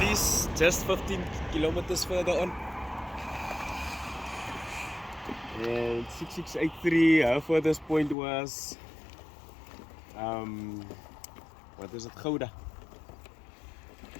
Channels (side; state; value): right; drops out; at 8.2 s